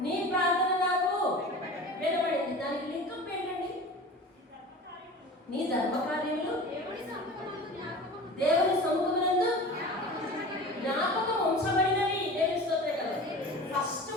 నీ ప్రార్థన నాకు వినబడింది. దానికి లింకప్ ఏంటండి? నీ ధర్మకార్యములు దేవుని సముఖమునందు జ్ఞాపకం ఉంచబడినవి. దేవుని స్తోత్రం కదా.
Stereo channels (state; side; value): normal; both; correlation 0.36